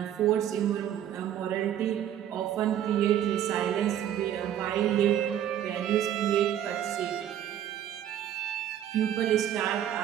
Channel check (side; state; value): left; quieter; 10.6 dB